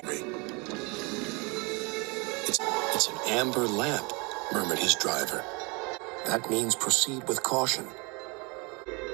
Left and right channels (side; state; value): left; quieter; 29.3 dB